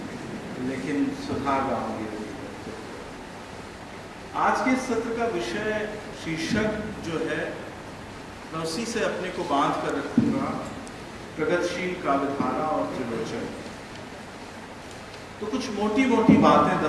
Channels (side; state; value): both; identical; correlation 1.00